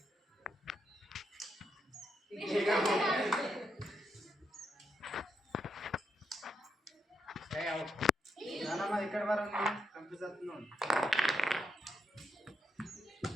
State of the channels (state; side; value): normal; both; correlation 0.81